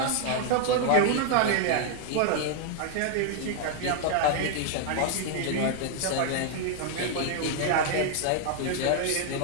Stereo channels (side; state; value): both; different; correlation 0.00